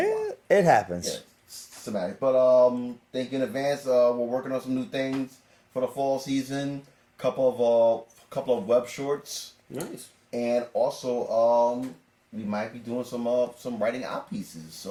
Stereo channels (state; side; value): identical; both; correlation 1.00